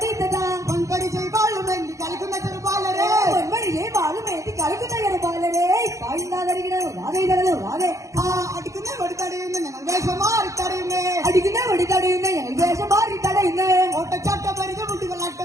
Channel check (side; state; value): left; late; 0.15 ms